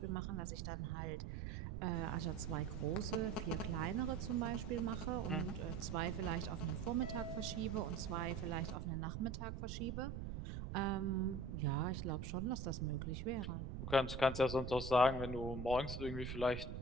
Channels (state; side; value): noise; right; rumble, 5 dB below the sound